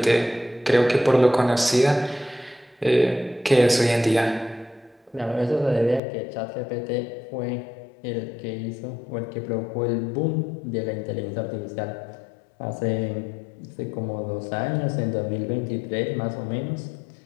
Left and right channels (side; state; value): right; drops out; at 6.0 s